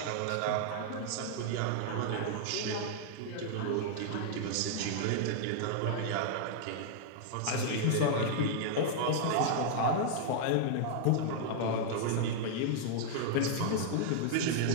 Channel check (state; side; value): different; both; correlation -0.01